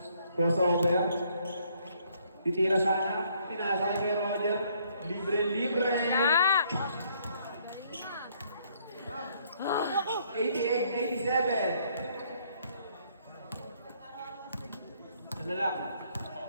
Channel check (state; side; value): inverted; both; correlation -0.67